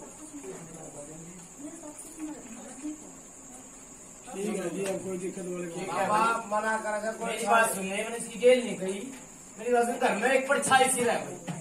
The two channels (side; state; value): both; identical; correlation 1.00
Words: ठीक है जी, अब कोई दिक्कत वाली बात ठीक है बाबा भाई। मना करेगा कोई मेरी बात सुन ले, मैंने इसकी गेल नहीं कही। मेरी बात सुन, घर में एक परछाई सी रह भाई।